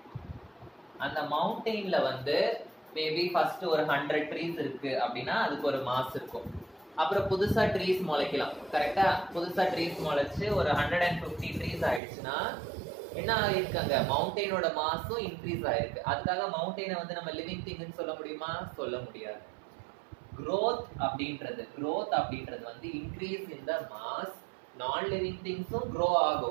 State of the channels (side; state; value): left; drops out; at 12.0 s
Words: அந்த மவுண்டெயின்ல வந்து மேபி ஃபர்ஸ்ட் ஒரு 100 ட்ரீஸ் இருக்கு அப்படின்னா அதுக்கு ஒரு மாஸ் இருக்கும். அப்புறம் புதுசா ட்ரீஸ் முளைக்கலாம், கரெக்டா? புதுசா ட்ரீஸ் முளைச்சு ஒரு 150 ட்ரீஸ் ஆயிடுச்சுன்னா என்ன ஆயிருக்கு? அங்க மவுண்டெயினோட மாஸும் இன்க்ரீஸ் ஆயிருக்கு. அதுக்காக மவுண்டெயினை வந்து நம்ம லிவிங் திங்னு சொல்ல முடியுமா? சொல்ல முடியாது. growth அப்படின்றது வந்து increase in the mass. Non living திங்ஸும் grow